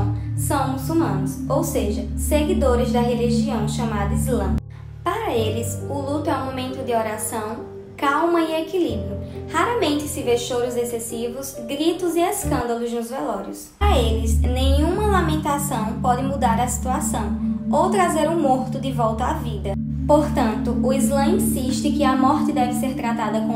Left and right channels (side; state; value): both; identical; correlation 1.00